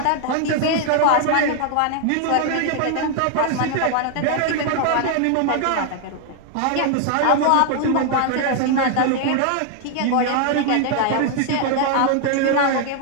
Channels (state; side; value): different; both; correlation 0.00